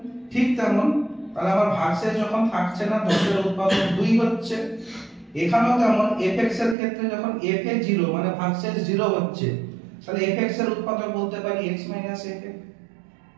ঠিক তেমন তাহলে আমার ভাগশেষ যখন থাকছে না 10 এর উৎপাদক 2 হচ্ছে, এখানেও তেমন fx এর ক্ষেত্রে যখন f এ 0 মানে ভাগশেষ 0 হচ্ছে, তাহলে fx এর উৎপাদক বলতে পারি x f।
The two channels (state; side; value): drops out; left; at 6.8 s